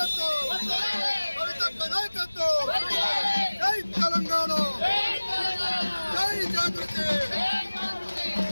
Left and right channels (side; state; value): both; inverted; correlation -1.00